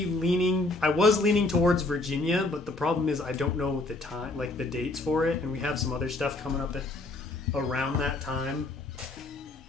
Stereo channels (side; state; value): right; quieter; 3.0 dB